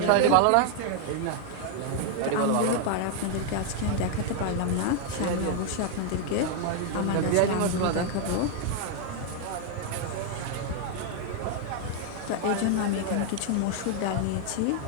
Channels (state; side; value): different; both; correlation 0.00